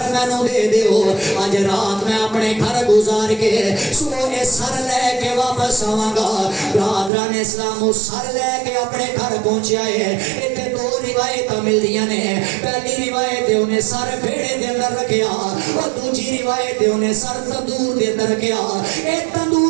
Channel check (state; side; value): drops out; left; at 7.1 s